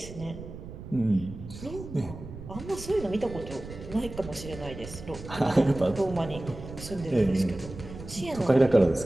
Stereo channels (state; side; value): noise; right; rumble, 13 dB below the sound